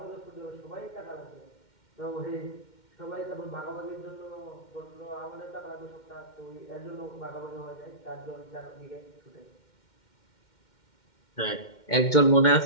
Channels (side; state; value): right; late; 2.1 ms